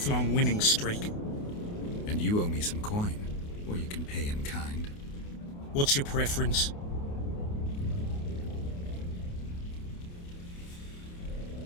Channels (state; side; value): late; right; 28 ms